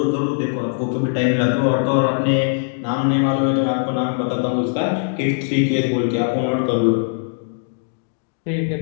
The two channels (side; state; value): right; silent; digital silence